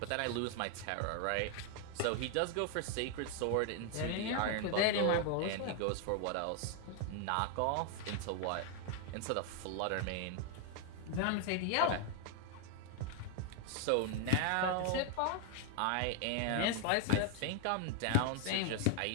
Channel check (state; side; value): different; both; correlation 0.00